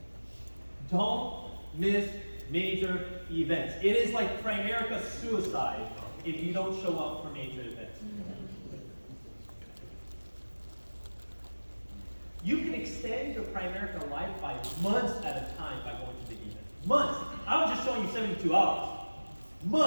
Don't miss major events. It is like Primerica suicide if you don't show up for major events. You can extend your Primerica life by months at a time by going to big events. Months. I was just showing you 72 hours.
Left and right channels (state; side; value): inverted; both; correlation -1.00